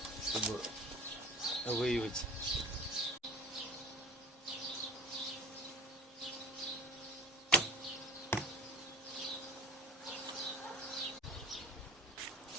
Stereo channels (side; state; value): both; normal; correlation 0.37